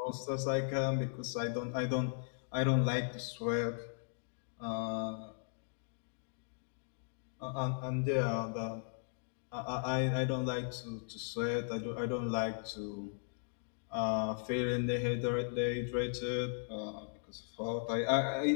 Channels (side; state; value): right; silent; digital silence